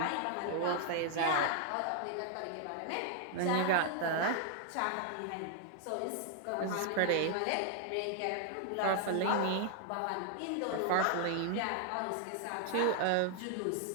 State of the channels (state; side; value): different; both; correlation 0.00